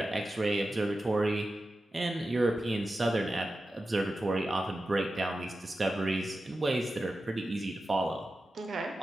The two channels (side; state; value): both; normal; correlation 0.93